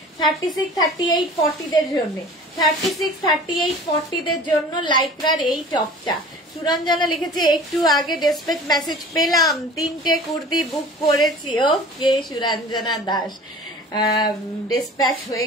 36, 38, 40দের জন্য, 36, 38, 40দের জন্য লাইকরার এই টপটা। সুরঞ্জনা লিখেছে একটু আগে ডেসপ্যাচ মেসেজ পেলাম, 3টে কুর্তি বুক করেছি। ওকে সুরঞ্জনা দাস, ডেসপ্যাচ হয়ে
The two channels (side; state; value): both; normal; correlation 0.42